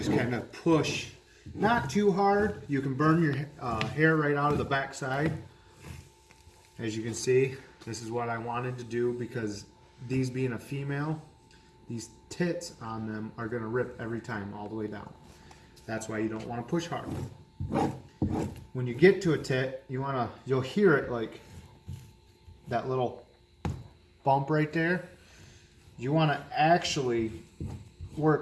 kind of push. Not too hard. You can burn your hair right out of the back side. As you can see, this is what I wanted to do because these being a female, these tits on them are going to rip every time all the way down. That's why you don't want to push hard. When you get to a tit, you'll hear it like that little bump right there. You want to actually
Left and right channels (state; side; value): identical; both; correlation 1.00